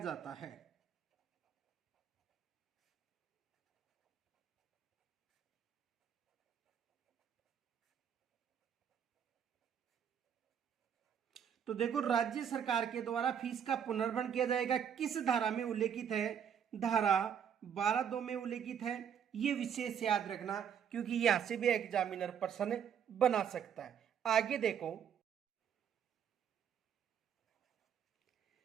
है। तो देखो राज्य सरकार के द्वारा फीस का पुनर्भरण किया जाएगा, किस धारा में उल्लेखित है? धारा 12(2) में उल्लेखित है। ये विशेष याद रखना, क्योंकि यहां से भी एग्जामिनर प्रश्न बना सकता है। आगे देखो,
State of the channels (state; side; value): quieter; left; 8.3 dB